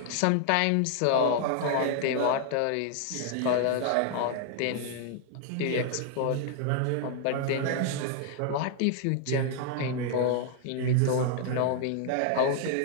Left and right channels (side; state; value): both; different; correlation 0.00